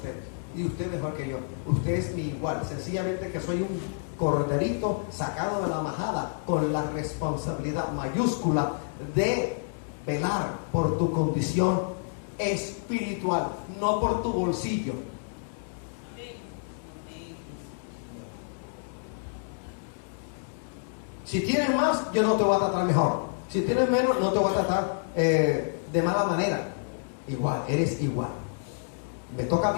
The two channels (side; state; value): right; silent; digital silence